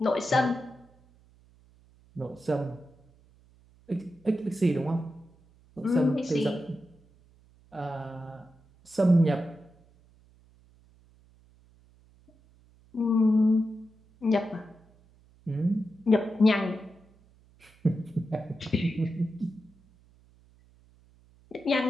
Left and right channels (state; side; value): noise; right; hum, 29 dB below the sound